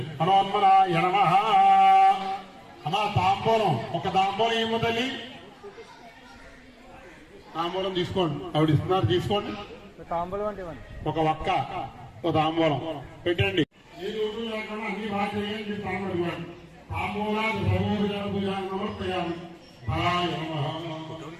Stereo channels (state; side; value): identical; both; correlation 1.00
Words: హనుమన్మనాయ నమః. అమ్మా తాంబూలం, ఒక తాంబూలం ఏమో తల్లి, తాంబూలం తీసుకోండి. ఆవిడ ఇస్తున్నారు, తీసుకోండి. తాంబూలం అంటే ఒక ఒక్క ఒక తాంబూలం పెట్టండి. ఏ రోజు లేకుండా అన్ని బాగా చేయండి. తాంబూలం తాంబూలాలు సర్వోపచారం సమర్పయామి. ఫలాయ నమః.